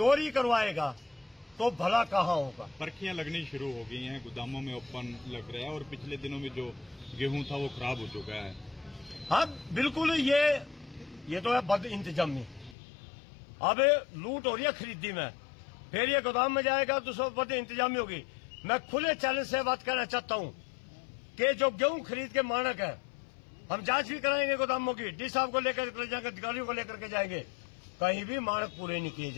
करवाएगा तो भला कहाँ होगा। पर्चियां लगनी शुरू हो गई हैं, गोदामों में ओपन लग रहा है और पिछले दिनों में जो गेहूं था वो खराब हो चुका है। हाँ बिल्कुल, ये तो है बद इंतजामी। अब लूट हो रही है खरीदी में, फिर ये गोदाम में जाएगा तो सब बद इंतजामी होगी। मैं खुले चैलेंज से बात करना चाहता हूं कि जो गेहूं खरीद के मानक है, हम जांच भी कराएंगे गोदामों की, डी साहब को लेकर के जाएंगे, अधिकारियों को लेकर के जाएंगे, कहीं भी मानक पूरे नहीं किए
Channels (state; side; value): drops out; right; at 12.8 s